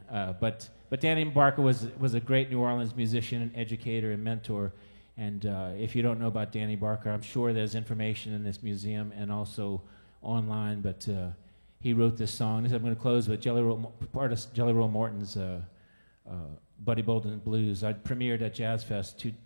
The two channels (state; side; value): inverted; both; correlation -1.00